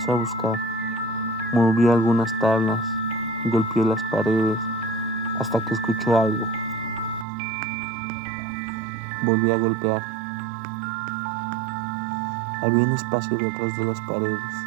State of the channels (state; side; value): drops out; left; at 7.2 s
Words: a buscar. Movió algunas tablas, golpeó las paredes, hasta que escuchó algo. Volvió a golpear. Había un espacio detrás de las paredes.